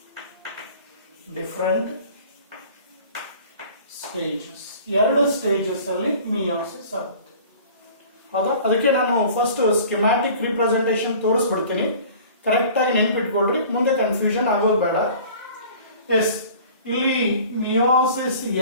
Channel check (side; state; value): both; inverted; correlation -0.45